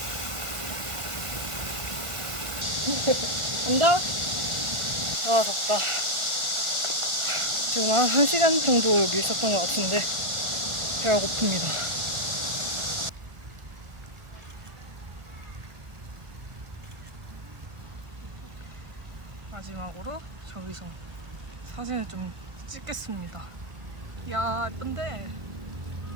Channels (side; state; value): left; late; 1.4 ms